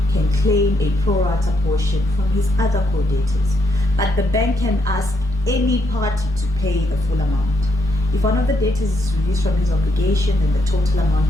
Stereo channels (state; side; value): normal; both; correlation 0.77